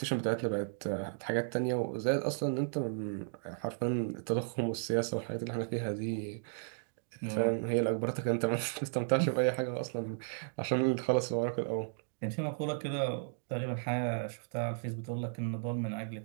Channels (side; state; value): left; silent; digital silence